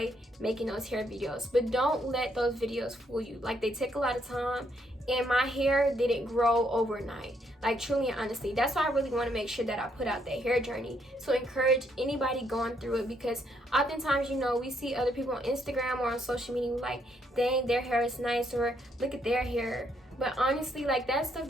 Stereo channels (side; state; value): both; normal; correlation 0.73